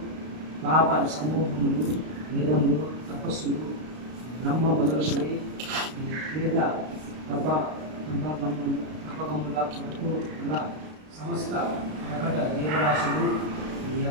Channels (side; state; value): left; late; 32 ms